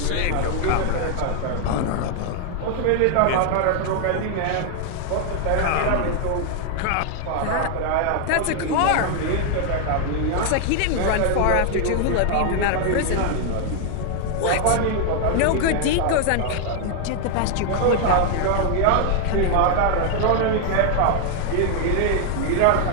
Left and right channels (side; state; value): both; different; correlation 0.00